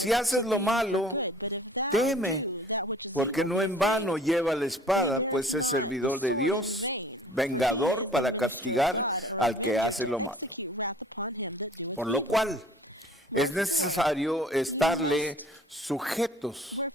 haces lo malo, teme. Porque no en vano lleva la espada, pues es servidor de Dios, vengador para castigar al que hace lo malo. Por lo cual es necesario estarle sujetos,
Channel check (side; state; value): both; normal; correlation 0.50